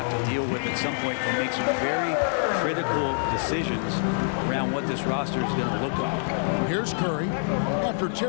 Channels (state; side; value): silent; right; digital silence